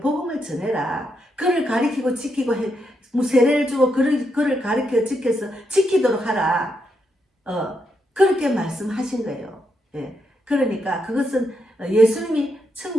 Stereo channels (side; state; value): both; normal; correlation 0.81